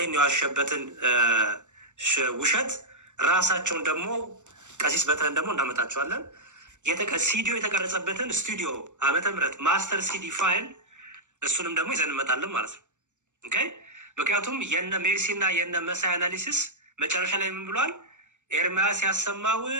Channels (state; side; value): late; left; 0.84 ms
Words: የዋሸበትን ውሸት ራሳቸውን ደግሞ ቀሲስ በትረን ደግሞ እናመጣቸዋለን። ሲዲዮ የተቀረጸበትን ስቱዲዮ ዓመተ ምህረት ማስተር ሲዲ ፋይል እሱንም ደግሞ ይዘን እንመጣለን ማለት ነው። ኦኬ። ምክንያቱም የነ ሜርሲ እና የነ መሳይ አናሊሲስ መጨረሻ ላይ ምን ብሏል? ኤርሚያስ ያሰማው